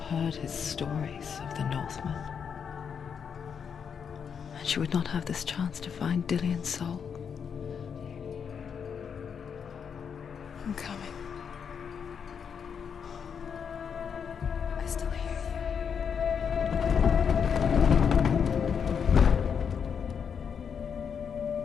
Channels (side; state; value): right; quieter; 7.0 dB